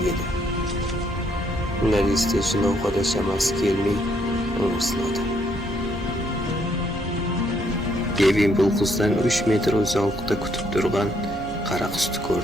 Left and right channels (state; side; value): normal; both; correlation 0.71